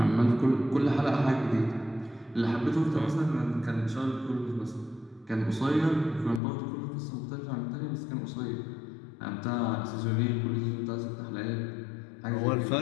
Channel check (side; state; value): right; drops out; at 6.4 s